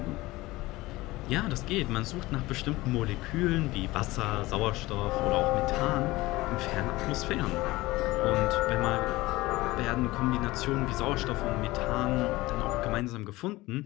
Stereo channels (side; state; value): right; quieter; 19.5 dB